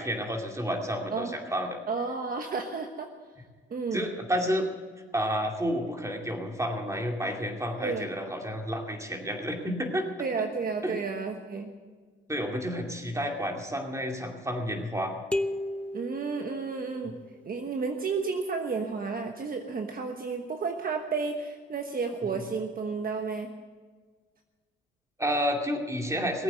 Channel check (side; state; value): both; normal; correlation 0.52